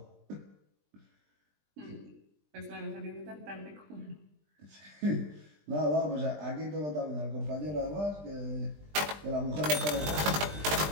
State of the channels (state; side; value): late; left; 20 ms